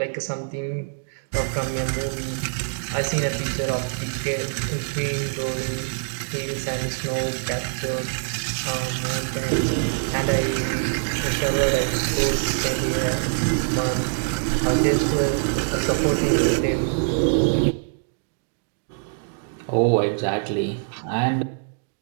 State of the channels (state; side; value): silent; left; digital silence